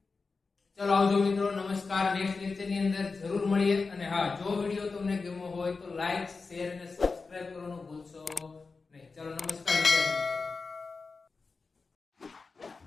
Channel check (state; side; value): quieter; right; 4.3 dB